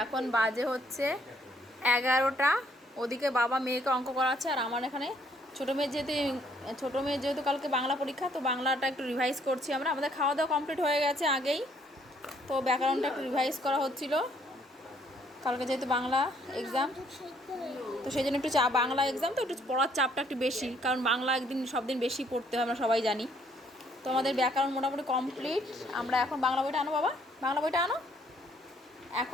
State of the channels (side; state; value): both; normal; correlation 0.66